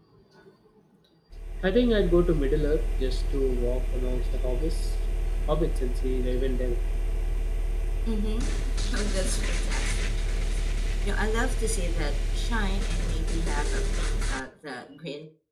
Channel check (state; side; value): identical; both; correlation 1.00